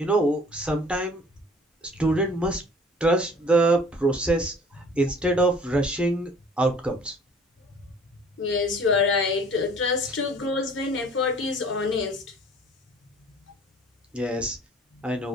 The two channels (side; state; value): both; normal; correlation 0.51